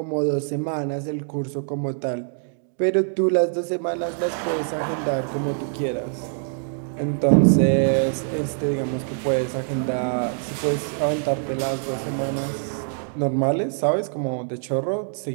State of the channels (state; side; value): silent; left; digital silence